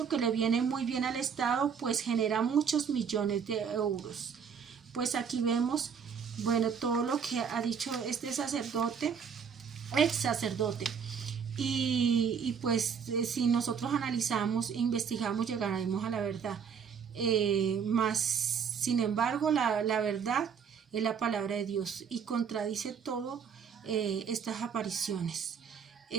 que le viene muy bien al Estado, pues genera muchos millones de euros. Pues aquí vemos, bueno, todo lo que ha dicho este sacerdote, ex sacerdote. Y pues si nosotros analizamos e investigamos, llegaremos a la verdad. Más, sin embargo, la verdad es la palabra de Dios y contradice todo estas apariciones.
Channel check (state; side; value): quieter; left; 6.9 dB